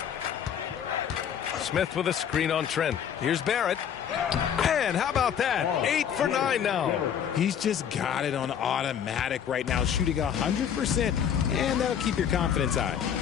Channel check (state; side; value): quieter; right; 8.6 dB